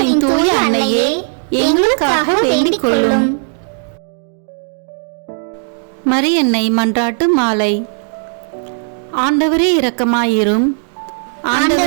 தூய அன்னையே, எங்களுக்காக வேண்டிக் கொள்ளும். மரியன்னை மன்றாட்டு மாலை. ஆண்டவரே இரக்கமாயிரும்,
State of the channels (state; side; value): silent; left; 69 dB below the other